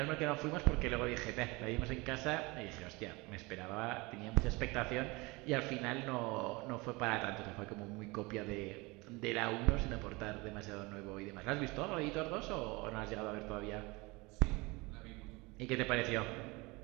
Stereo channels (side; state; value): left; quieter; 24.6 dB